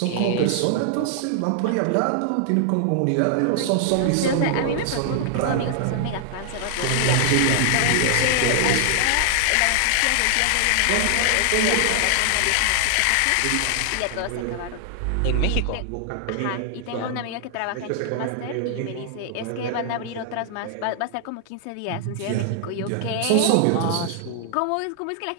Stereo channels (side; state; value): both; different; correlation 0.00